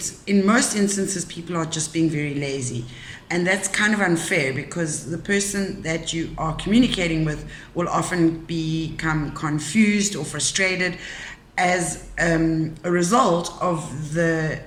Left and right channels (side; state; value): both; identical; correlation 1.00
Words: in most instances, people are just being very lazy. And that's kind of unfair, because the person that you are communicating with will often become confused or frustrated as a result of the